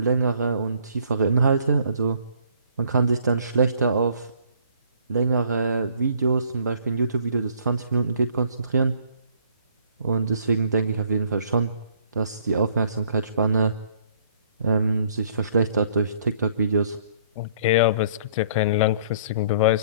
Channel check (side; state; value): both; inverted; correlation -0.60